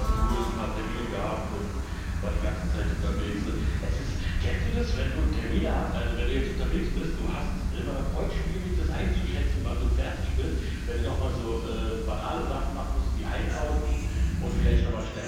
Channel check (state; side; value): identical; both; correlation 1.00